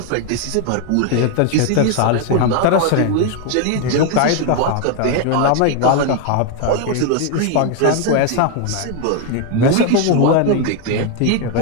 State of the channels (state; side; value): different; both; correlation 0.01